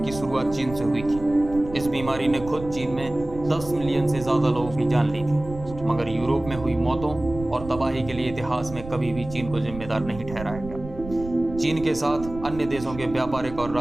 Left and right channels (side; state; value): right; noise; rumble, 13 dB below the sound